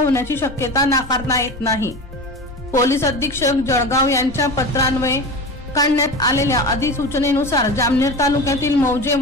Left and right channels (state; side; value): noise; left; rumble, 17 dB below the sound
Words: शक्यता नाकारता येत नाही। पोलीस अधीक्षक जळगाव यांच्या पत्रान्वये काढण्यात आलेल्या अधिसूचनेनुसार जामनेर तालुक्यातील मौजे